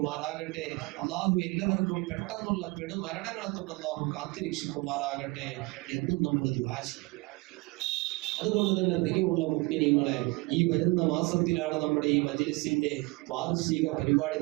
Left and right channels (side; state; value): left; quieter; 25.4 dB